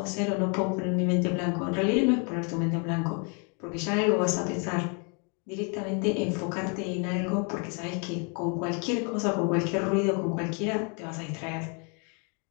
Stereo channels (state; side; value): quieter; right; 36.5 dB